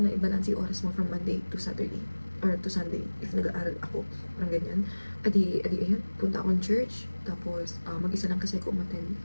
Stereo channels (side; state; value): both; inverted; correlation -1.00